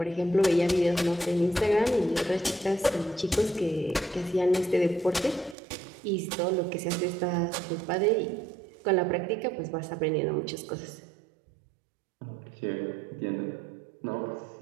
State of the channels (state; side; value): drops out; left; at 5.6 s